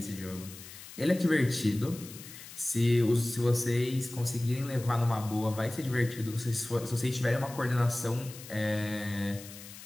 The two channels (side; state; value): left; noise; hiss, 15 dB below the sound